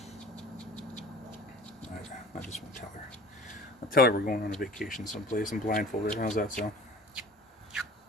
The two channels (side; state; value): both; normal; correlation 0.44